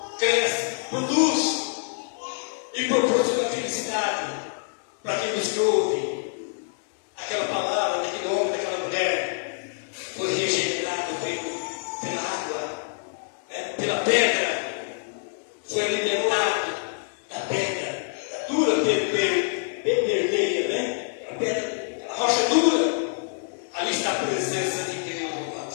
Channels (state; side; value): silent; right; 61 dB below the other